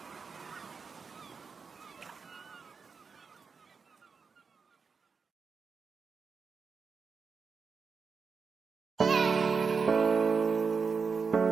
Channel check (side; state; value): left; quieter; 5.3 dB